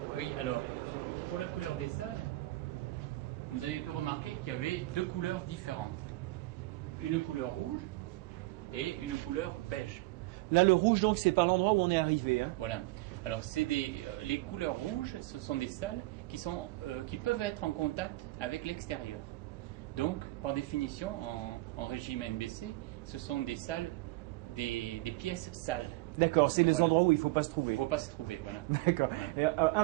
Oui, alors, pour la couleur des salles, vous avez pu remarquer qu'il y avait 2 couleurs différentes. Une couleur rouge et une couleur beige. Là, le rouge, donc, c'est par l'endroit où on est arrivé. Hein. Voilà. Alors, les couleurs rouges, ce sont des salles qui peuvent être en contact avec l'extérieur. Donc, par définition, en régime NBC, ce sont des salles, des pièces sales. D'accord, c'est les Voilà. endroits où il ne faut pas se trouver. Il ne faut pas se trouver, voilà. D'accord. Voilà. Et,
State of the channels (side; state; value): left; quieter; 20.0 dB